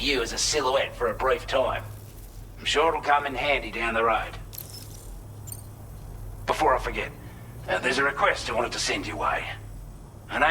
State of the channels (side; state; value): both; identical; correlation 1.00